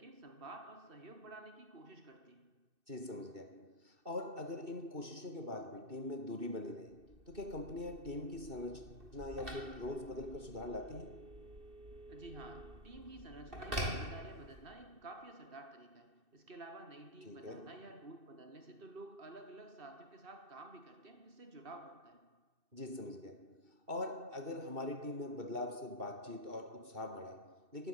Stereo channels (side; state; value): left; late; 2.6 ms